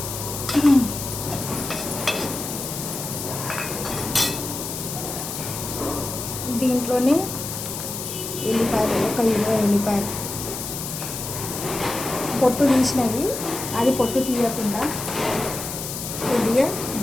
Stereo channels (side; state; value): left; noise; hiss, 6 dB below the sound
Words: దీంట్లోనే ఎల్లిపాయలు, 1 ఎల్లిపాయలు పొట్టు తీసినవి, అది పొట్టు తీయకుండా కొద్దిగా